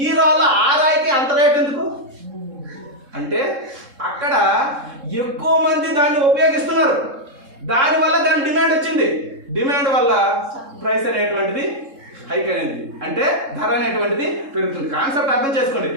ఈ రాళ్ళు ఆ రాయికి అంత రేట్ ఎందుకు అంటే అక్కడ ఎక్కువ మంది దాన్ని ఉపయోగిస్తున్నారు, దానివల్ల దాని డిమాండ్ వచ్చింది. డిమాండ్ వల్ల ప్రైస్ అనేటువంటిది హైక్ అనేది, అంటే ధర అనేటువంటిది పెరుగుతుంది. కాన్సెప్ట్ అర్థం చేసుకోండి.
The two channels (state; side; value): late; left; 3.7 ms